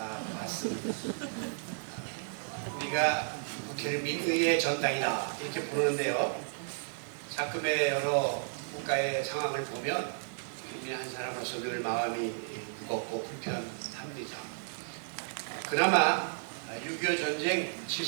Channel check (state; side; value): silent; left; 56 dB below the other